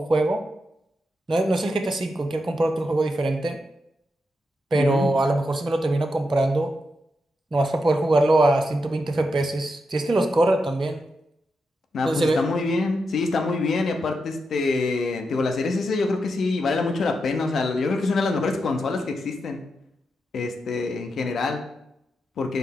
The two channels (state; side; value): normal; both; correlation 0.86